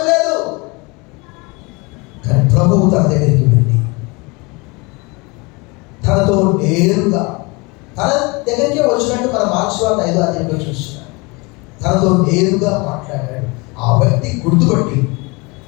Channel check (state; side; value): quieter; right; 27.1 dB